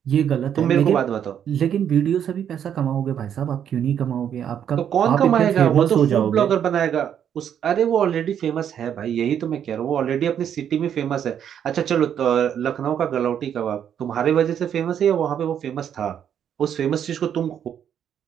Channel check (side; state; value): left; quieter; 9.0 dB